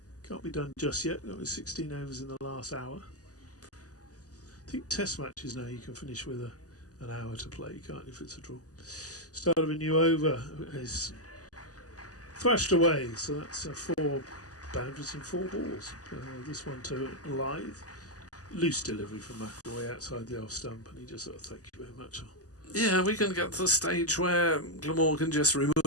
just yet. That was 16 overs in the last hour. I think test matches now you can finish with an hour to play, can't you, if it's a draw. Start of a new over is thrashed away, so that's 4 boundaries and 4 balls. This one to Lythe. Loose delivery from McAvoy outside the off stump, and he just sort of thank you very much. Yeah, we can get to the stage where Glamorgan just remove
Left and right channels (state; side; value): late; right; 0.67 ms